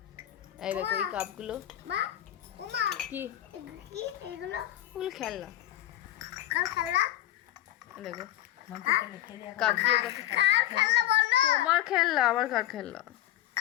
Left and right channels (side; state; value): right; quieter; 13.5 dB